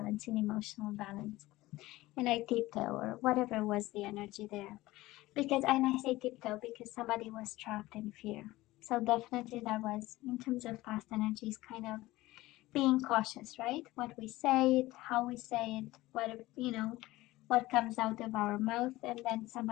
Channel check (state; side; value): quieter; right; 18.1 dB